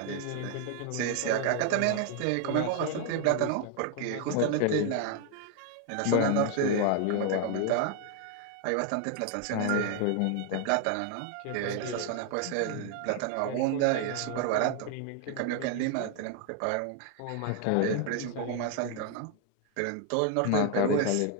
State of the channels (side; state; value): both; different; correlation 0.00